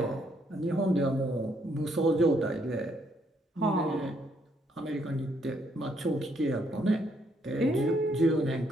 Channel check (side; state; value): both; normal; correlation 0.72